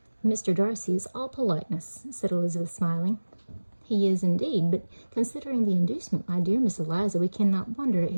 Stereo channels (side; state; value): both; inverted; correlation -1.00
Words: Mr. Darcy is all politeness, said Elizabeth, smiling. He is indeed, but considering the inducement, my dear Miss Eliza, we cannot wonder at